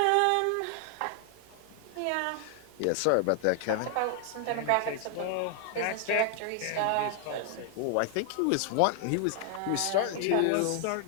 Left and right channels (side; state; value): both; different; correlation 0.00